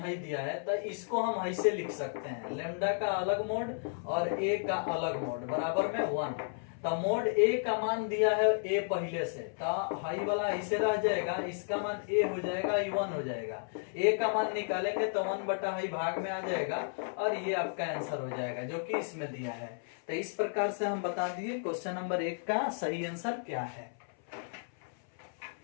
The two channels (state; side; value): silent; right; 56 dB below the other